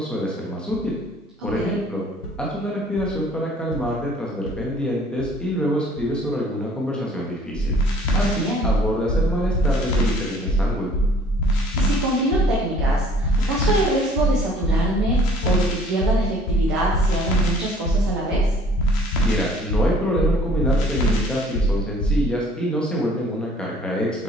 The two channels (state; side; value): normal; both; correlation 0.55